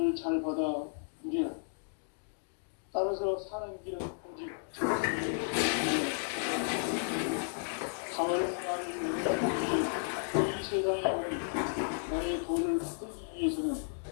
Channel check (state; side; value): silent; right; digital silence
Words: 잘 받아 누리라. 따라서 사는 길은 오직 정심이 가을날을 열어주기 이 세상에 온 나의 도를 받들기 위해서는